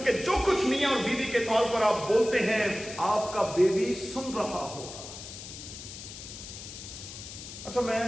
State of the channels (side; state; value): left; noise; hiss, 12 dB below the sound